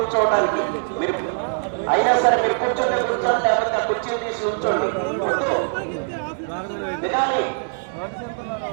మీరు అయినా సరే మీరు కూర్చోండి లేకపోతే ఆ కుర్చీలు తీసి ఉంచండి. వినాలి,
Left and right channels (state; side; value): silent; left; digital silence